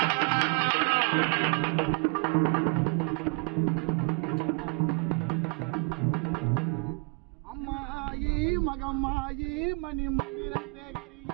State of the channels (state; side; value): quieter; left; 34.0 dB